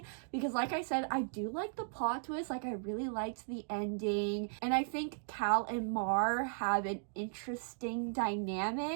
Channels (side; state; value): left; silent; digital silence